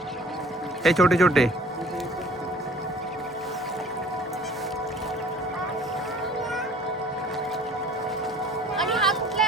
हे छोटे छोटे आणि हा कुठला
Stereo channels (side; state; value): right; noise; rumble, 30 dB below the sound